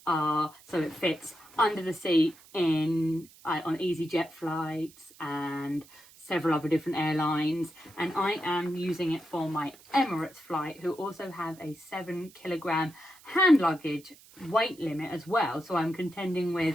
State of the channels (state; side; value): noise; right; hiss, 24 dB below the sound